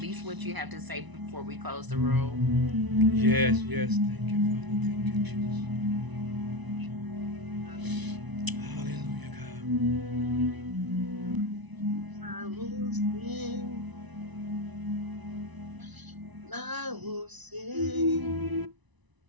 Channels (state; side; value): late; left; 1.0 ms